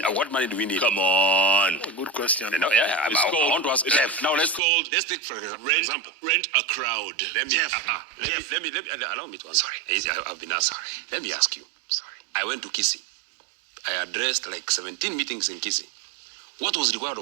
what money do we need? Come on. Good question. No, I want to ask Jeff. Now, let's take for example. Rent a crowd. Let me, Jeff, let me, allow me to answer. Sorry. I've been asked. Sorry. Let me ask you. Sorry. I went to Kisii. I addressed like 17 meetings in Kisii. What was required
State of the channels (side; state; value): left; drops out; at 4.6 s